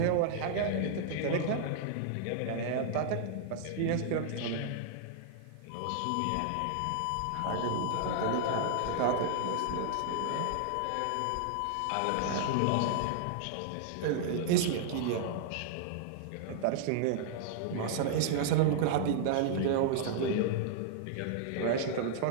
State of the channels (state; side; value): different; both; correlation -0.01